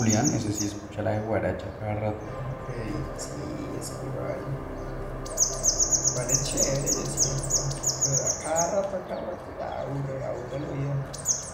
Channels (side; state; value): both; identical; correlation 1.00